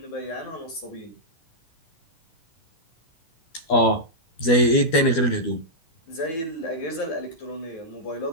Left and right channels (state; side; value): late; right; 12 ms